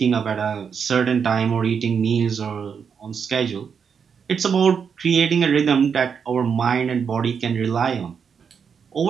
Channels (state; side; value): quieter; left; 6.6 dB